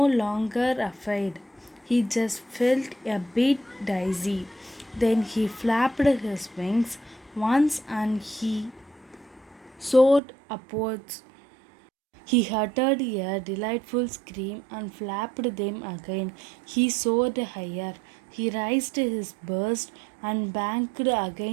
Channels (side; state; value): left; drops out; at 10.2 s